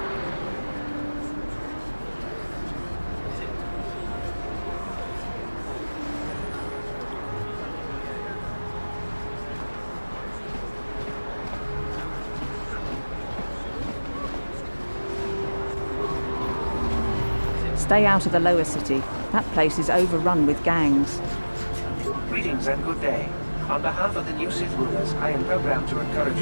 out of the lower city. That place is overrun with gangs. Greetings and good day. On behalf of the new Sith rulers, I am programmed to encourage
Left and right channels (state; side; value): inverted; both; correlation -1.00